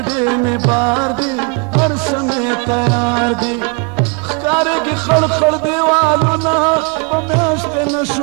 مې بار دي هر څه مې تیار دي ښکارېږي خړ خړ دیوالونه په میاشتې نه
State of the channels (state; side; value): quieter; left; 33.2 dB